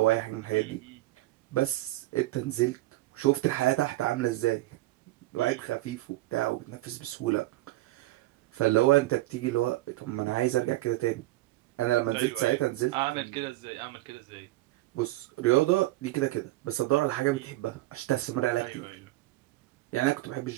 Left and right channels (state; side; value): quieter; left; 18.0 dB